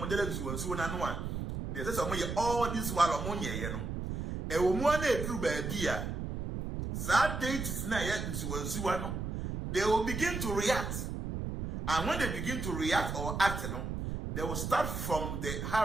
Suano. There's some way all this while ammonia, you know. E woman through badia. Sad date is not yet into Suano. They will begin to react. And when they begin to react or act, you know, they will start from the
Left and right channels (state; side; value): noise; right; rumble, 4 dB below the sound